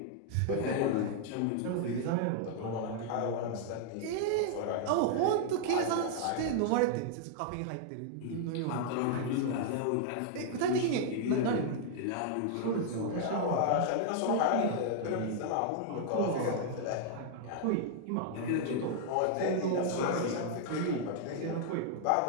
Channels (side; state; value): both; different; correlation -0.01